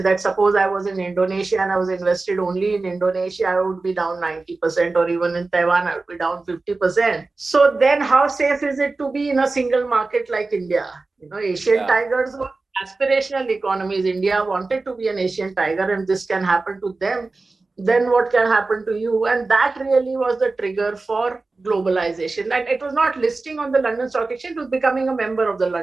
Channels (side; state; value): left; quieter; 3.6 dB